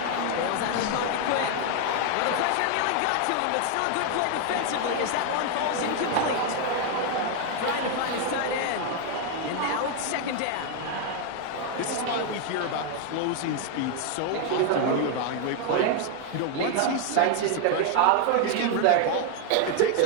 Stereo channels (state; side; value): different; both; correlation 0.01